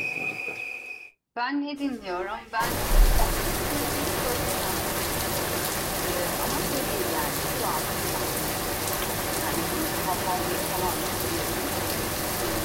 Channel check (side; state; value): both; identical; correlation 1.00